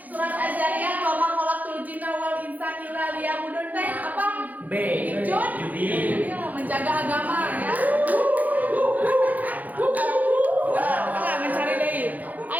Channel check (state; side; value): late; left; 0.080 ms